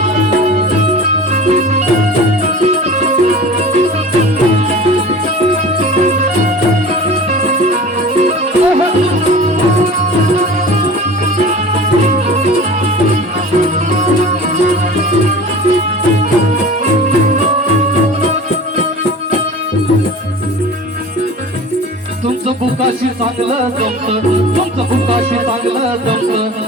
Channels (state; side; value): normal; both; correlation 0.39